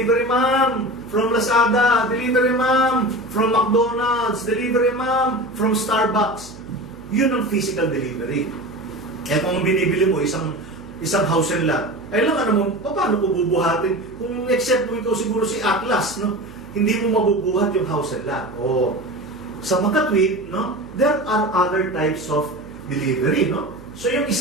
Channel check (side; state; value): right; noise; hum, 18 dB below the sound